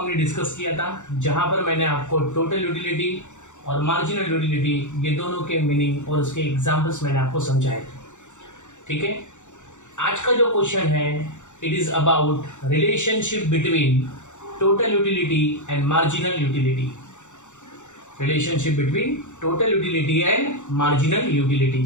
discuss किया था, जहां पर मैंने आपको टोटल यूटिलिटी और मार्जिनल यूटिलिटी ये दोनों के मीनिंग और उसके एग्जांपल्स मैंने आपको समझाए थे. ठीक है, आज का जो क्वेश्चन है it is about relationship between total utility and marginal utility. Relationship between total utility and marginal utility.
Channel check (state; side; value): late; right; 0.85 ms